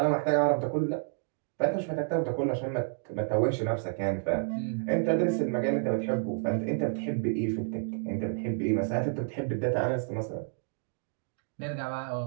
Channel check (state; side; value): silent; left; digital silence